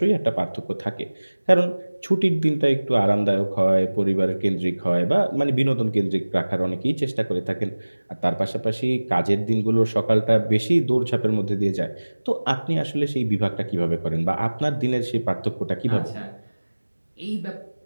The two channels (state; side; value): inverted; both; correlation -1.00